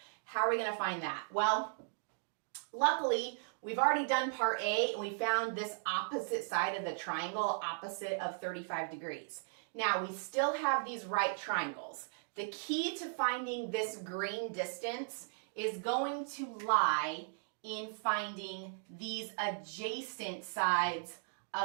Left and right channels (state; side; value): silent; left; digital silence